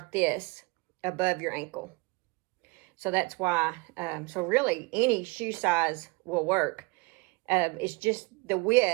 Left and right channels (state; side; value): quieter; left; 27.2 dB